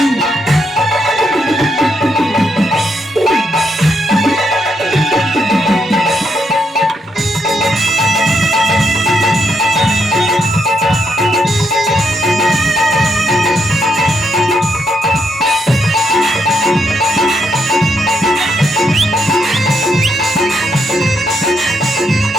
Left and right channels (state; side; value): normal; both; correlation 0.77